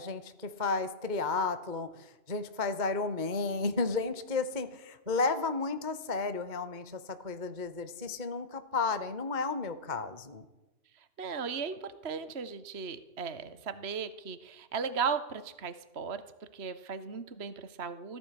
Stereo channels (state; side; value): late; left; 2.2 ms